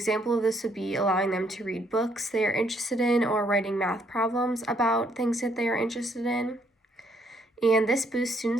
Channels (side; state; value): both; normal; correlation 0.70